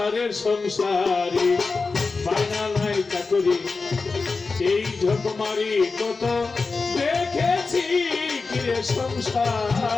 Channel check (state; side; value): quieter; right; 4.2 dB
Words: সংসারী বায়না নাই চাকরি, এই ঝকমারি কত দেখেছি, কিরে